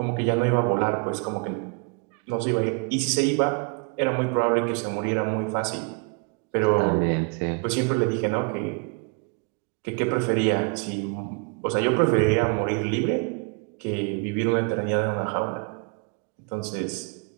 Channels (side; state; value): left; quieter; 33.7 dB